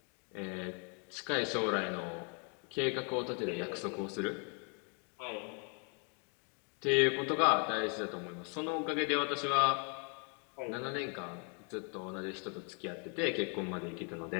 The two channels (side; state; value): right; quieter; 38.0 dB